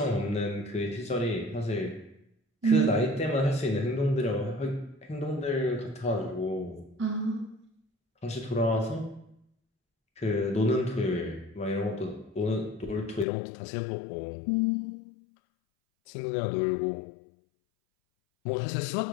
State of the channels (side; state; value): right; drops out; at 13.2 s